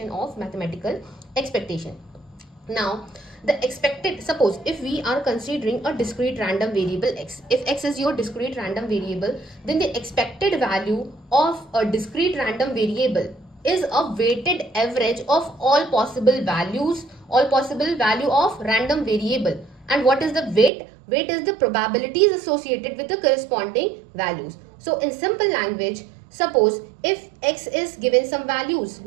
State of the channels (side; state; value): left; drops out; at 20.7 s